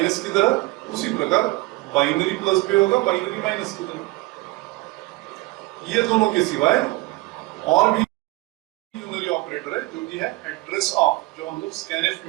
की तरह, उसी प्रकार बाइनरी प्लस भी होगा बाइनरी माइनस की तरह। ये दोनों के सिवाय और भी यूनरी ऑपरेटर है जो कि है एड्रेस ऑफ, जो हम लोग स्कैनफ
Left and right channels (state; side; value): quieter; left; 21.3 dB